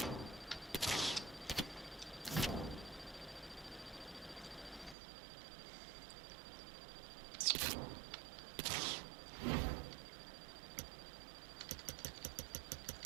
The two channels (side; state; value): left; drops out; at 5.0 s